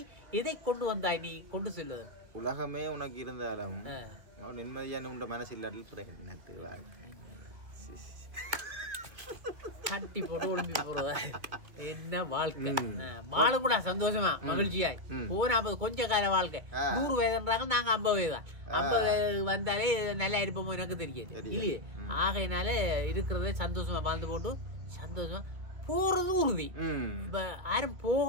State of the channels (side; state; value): left; late; 2.5 ms